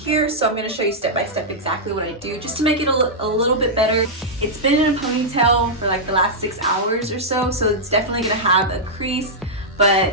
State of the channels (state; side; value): normal; both; correlation -0.09